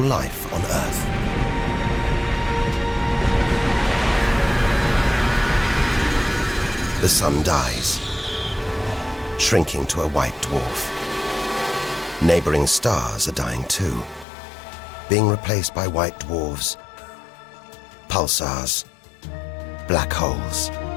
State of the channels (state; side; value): drops out; right; at 14.2 s